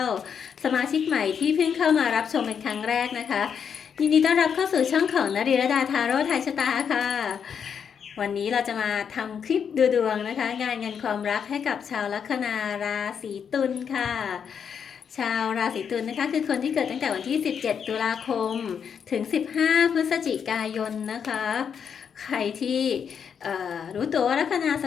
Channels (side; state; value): right; quieter; 7.3 dB